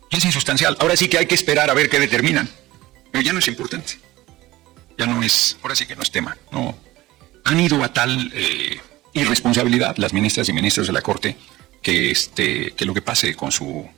Ya es insustancial. Ahora sí que hay que esperar a ver qué determinan. Pero ya no es importante. Ya no es, ahora sí que no es tema. No. Han ido a tal irresponsabilidad las ministras y ministros de la Corte que lo que pase con sus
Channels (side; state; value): left; quieter; 17.7 dB